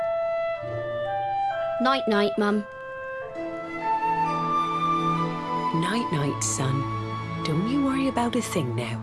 Night-night, Mum. Night-night, son. Don't you worry about a thing now.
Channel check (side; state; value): both; identical; correlation 1.00